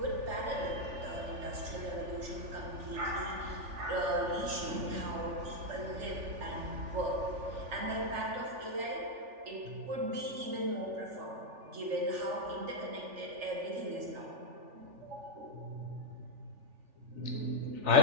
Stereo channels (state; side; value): late; left; 3.4 ms